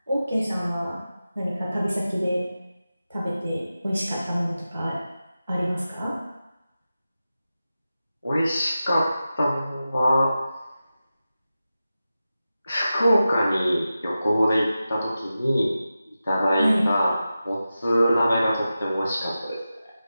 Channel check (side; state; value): both; inverted; correlation -0.93